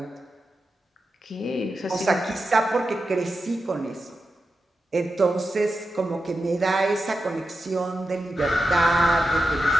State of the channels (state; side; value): normal; both; correlation 0.90